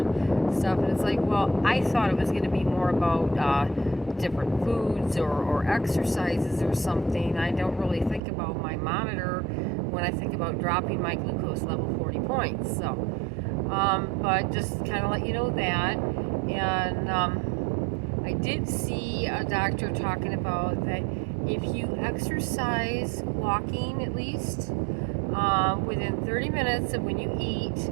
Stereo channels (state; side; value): drops out; left; at 8.2 s